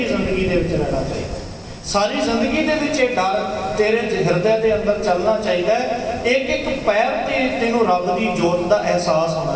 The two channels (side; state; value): both; identical; correlation 1.00